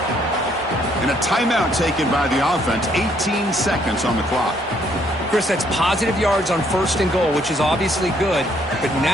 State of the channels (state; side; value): normal; both; correlation 0.68